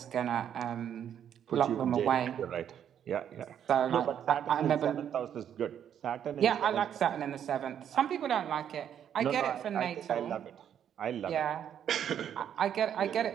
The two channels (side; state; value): left; quieter; 9.3 dB